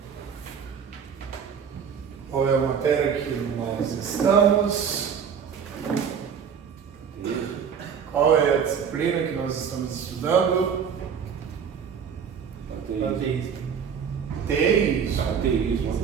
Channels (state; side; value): quieter; left; 7.1 dB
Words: Qual é a matéria que nós estamos? Qual é a disciplina que nós estamos estudando?